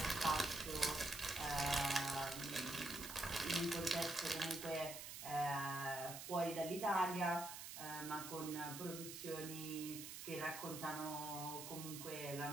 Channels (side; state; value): right; noise; hiss, 8 dB below the sound